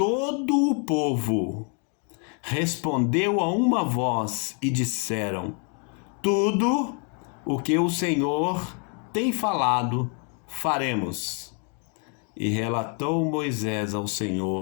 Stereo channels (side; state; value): right; quieter; 38.7 dB